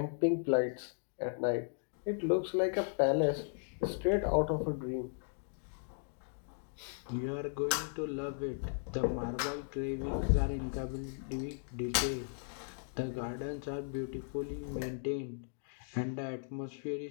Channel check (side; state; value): right; silent; digital silence